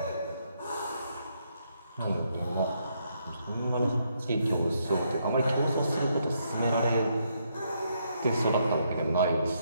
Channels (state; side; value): inverted; both; correlation -0.75